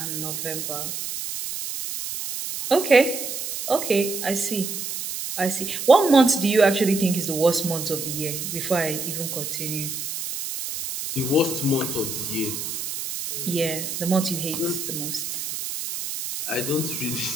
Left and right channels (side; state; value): right; noise; hiss, 5 dB below the sound